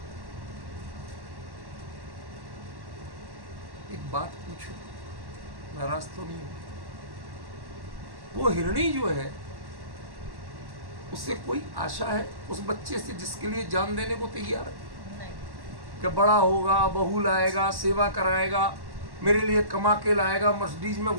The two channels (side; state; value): left; late; 1.1 ms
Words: एक बात पूछो, नाराज तो नहीं हो? वो हिरणी जो है उससे कोई आशा है उस बच्चे से जिसके लिए जान देने को तैयार है? नहीं। कि बड़ा होगा, बहू लाएगा, सेवा कराएगा, मेरे लिए कमा के लाएगा, मर्सिडीज में